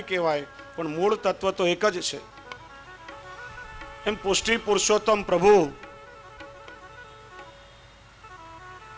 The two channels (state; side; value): identical; both; correlation 1.00